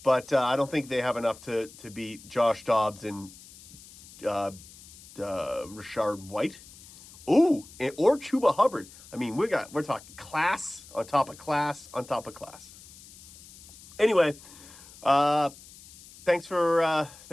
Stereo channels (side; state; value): left; noise; hiss, 20 dB below the sound